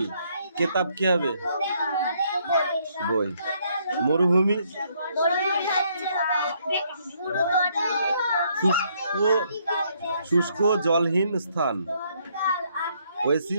কিতাব কি হবে বই। মরুভূমি শুষ্ক জলহীন স্থান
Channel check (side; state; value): both; inverted; correlation -0.70